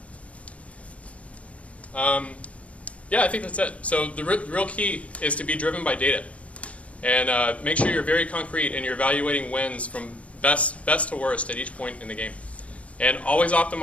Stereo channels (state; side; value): late; right; 0.064 ms